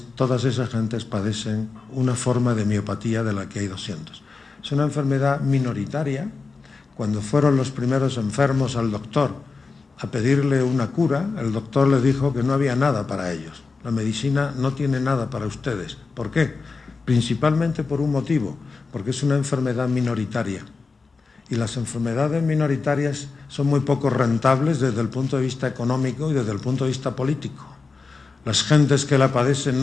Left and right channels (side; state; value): right; quieter; 4.3 dB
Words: todas esas gentes padecen una forma de miopatía de la que hay 200. Es una enfermedad minoritaria. Cuando fueron los primeros enfermos al doctor a pedirle una cura, el doctor le dijo que no había nada para ellos. La medicina no tiene nada para ustedes. ¿Por qué? Principalmente por un motivo, porque es una enfermedad minoritaria. Y las enfermedades minoritarias son muy poco rentables desde el punto de vista económico y desde el punto de vista político. Las gentes que la padecen